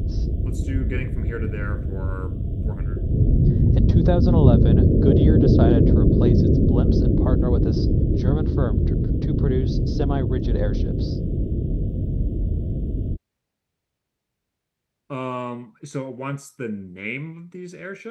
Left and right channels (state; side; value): identical; both; correlation 1.00